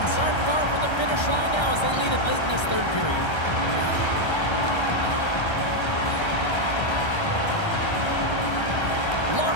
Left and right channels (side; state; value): right; late; 1.3 ms